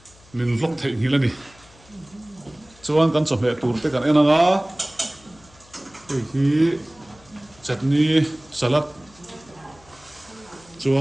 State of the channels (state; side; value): noise; left; hum, 26 dB below the sound